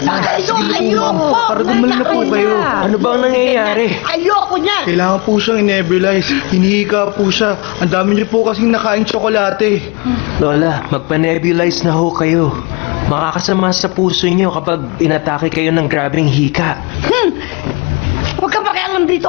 ba kayo? Ayoko! Para gumaling na po kayo. Ano ba ang nangyayari? Ayoko niyan! Kailangan po siyang in-nebulize. Hinihika po siya. Ang dami niyo po kasing nakain tsokolate. Lola, magpa-nebulize na ho kayo. Makakasama sa puso niyo kapag inatake kayo ng grabing hika. Huwag ka pakialam dito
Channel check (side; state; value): right; quieter; 29.0 dB